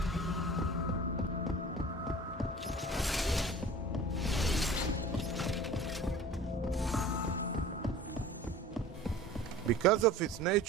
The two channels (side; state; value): both; normal; correlation 0.41